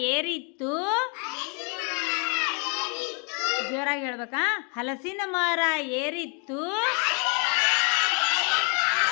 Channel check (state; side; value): quieter; right; 36.0 dB